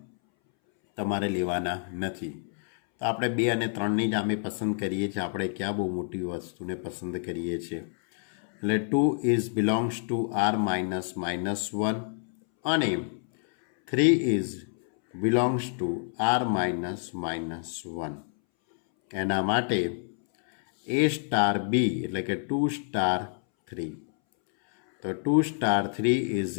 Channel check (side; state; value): right; silent; 59 dB below the other